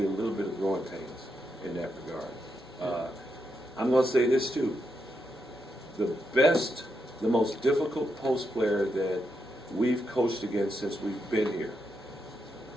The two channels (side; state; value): both; normal; correlation 0.82